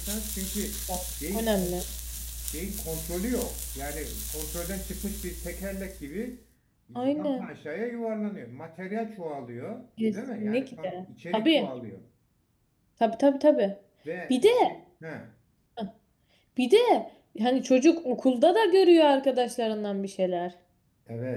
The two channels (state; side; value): identical; both; correlation 1.00